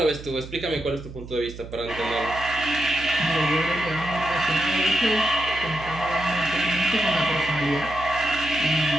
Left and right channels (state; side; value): noise; right; hum, 13 dB below the sound